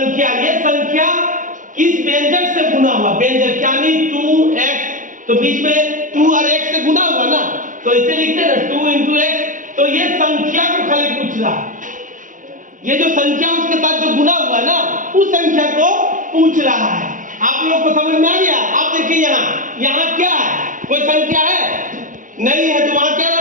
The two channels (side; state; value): left; late; 0.38 ms